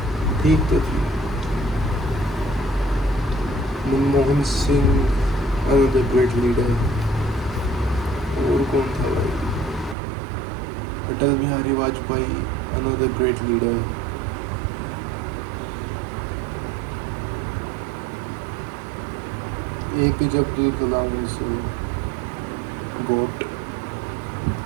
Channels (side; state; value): left; drops out; at 10.0 s